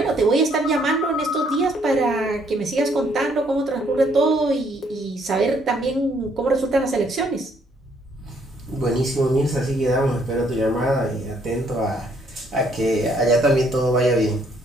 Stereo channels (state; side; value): normal; both; correlation 0.67